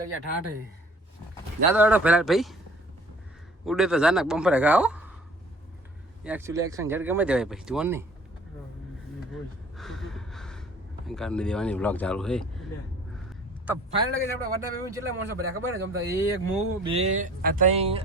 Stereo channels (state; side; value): normal; both; correlation 0.51